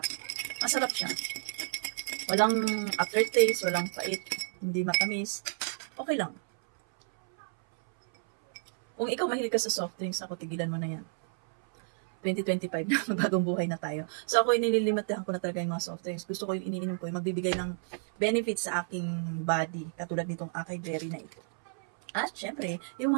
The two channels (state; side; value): silent; left; 57 dB below the other